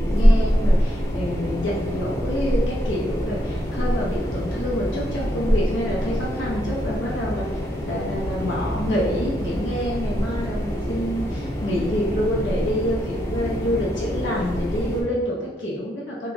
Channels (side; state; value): both; normal; correlation 0.77